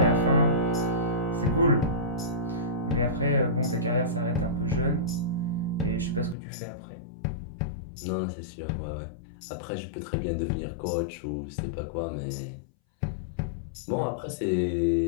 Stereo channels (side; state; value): right; drops out; at 6.4 s